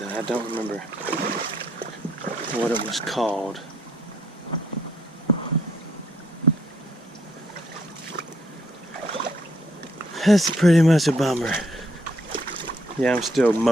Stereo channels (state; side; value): normal; both; correlation 0.70